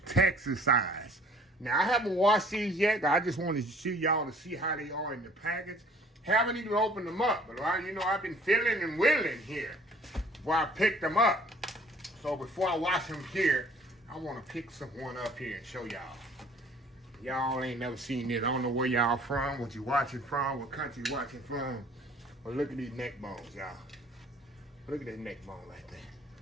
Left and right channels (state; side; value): normal; both; correlation 0.54